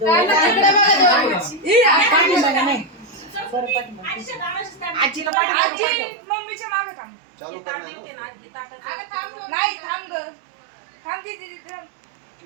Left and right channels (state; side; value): drops out; left; at 5.3 s